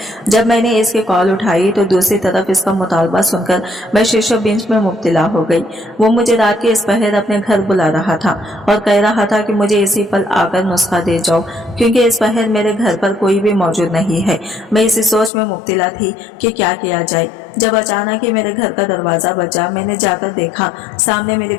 जब मैंने इसकी कॉल उठाई तो दूसरी तरफ इसका मुतालबा सुनकर मैं शीशो बेंच में मुब्तला हो गई। वो मुझे रात के इस पहर अपने घर बुला रहा था और कह रहा था कि मुझे इसी पल आकर नुस्खा दे जाओ, क्योंकि इस पहर मेरे घर पर कोई भी मौजूद नहीं है। मैं इसी सोच में मुब्तला थी कि क्या किया जाए, जब अचानक ही मेरे घर का दरवाजा बजा। मैंने जाकर देखा, सामने मेरी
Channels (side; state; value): right; drops out; at 15.3 s